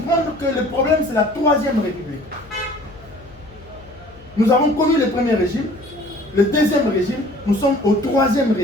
que le problème, c'est la Troisième République. Nous avons connu le premier régime, le deuxième régime, nous sommes au troisième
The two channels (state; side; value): noise; left; hum, 23 dB below the sound